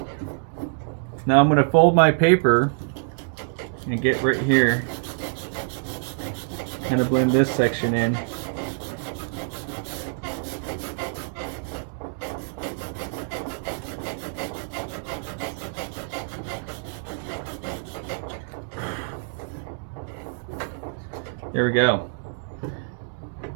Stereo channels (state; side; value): silent; left; digital silence